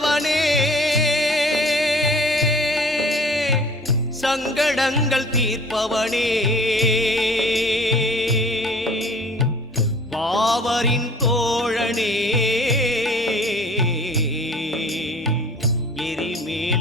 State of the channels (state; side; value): normal; both; correlation 0.48